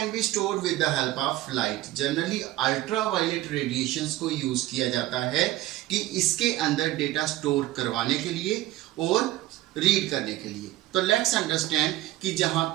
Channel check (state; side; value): quieter; left; 16.3 dB